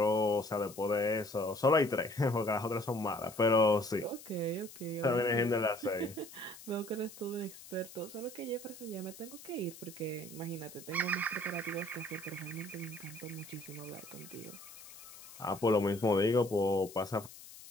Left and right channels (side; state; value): left; noise; hiss, 17 dB below the sound